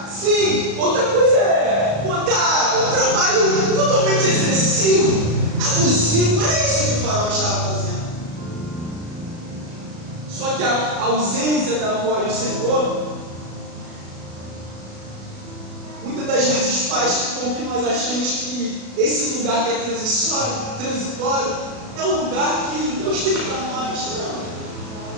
sim, outra coisa é botar um trabalho totalmente excessivo, abusivo. Era isso que o faraó estava fazendo. Só que a ausência da voz do Senhor muitas das vezes faz com que nós achemos que esse lugar que é transitório é um lugar que Deus tem para nós. Não,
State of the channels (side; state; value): left; late; 36 ms